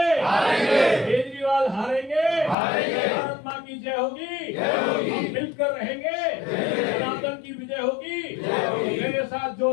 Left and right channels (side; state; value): right; drops out; at 2.6 s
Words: केजरीवाल हारेंगे? भारत मां की की जय होगी, हम मिलकर रहेंगे, सनातन की विजय होगी। मेरे साथ